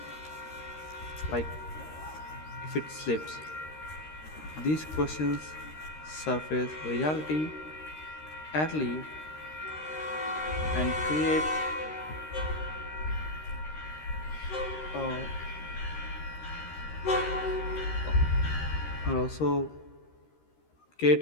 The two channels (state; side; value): late; right; 13 ms